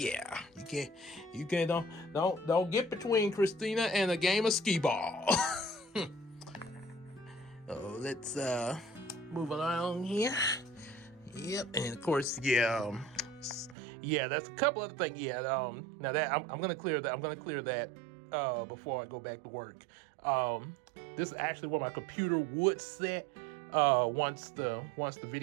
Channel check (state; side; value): drops out; left; at 13.8 s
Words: You can't don't get between Christina and a game of skee ball. Oh, let's move along here. Yep, and of course, yeah, that's a couple other things. Yeah, now that I'm gonna clear that. I'm gonna clear that before I go back to work. This is actually where my computer would sit once the